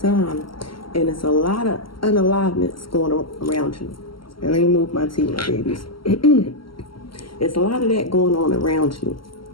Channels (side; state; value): right; late; 0.74 ms